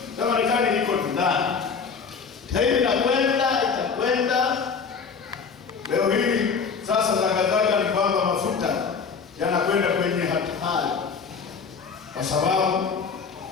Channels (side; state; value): right; quieter; 5.7 dB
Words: la Marekani liko ndani. Hii itakwenda leo hii. Sasa zagazaga ni kwamba mafuta yanakwenda kwenye hatari kwa sababu